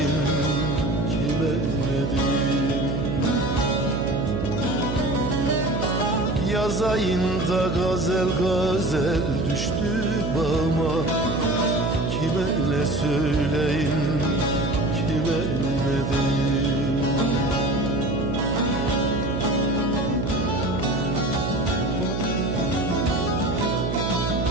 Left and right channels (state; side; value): noise; right; hum, 2 dB below the sound